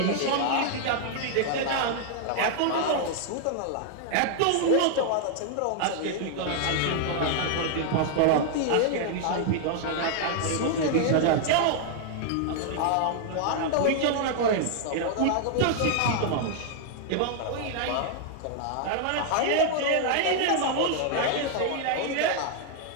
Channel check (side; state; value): both; different; correlation 0.00